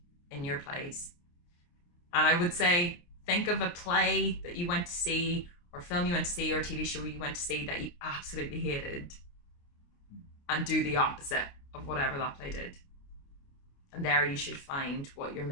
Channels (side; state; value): right; late; 29 ms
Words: in your plays. And I would say, think of a play that you went to see, or film you went to see, or a TV show you went to see that you absolutely hated, and do the opposite of whatever that play did. And there you should find what your